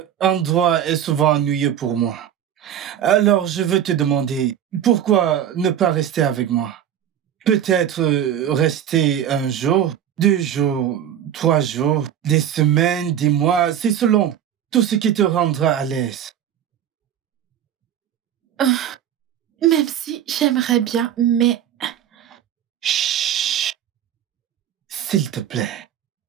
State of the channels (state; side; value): quieter; left; 10.0 dB